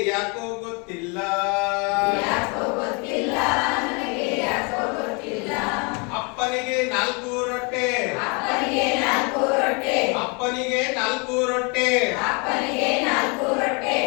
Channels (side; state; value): right; quieter; 32.2 dB